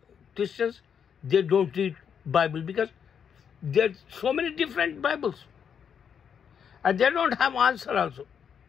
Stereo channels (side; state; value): right; quieter; 7.5 dB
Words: Christians, they don't read Bible, because there's so many different Bibles. And they don't have answer also.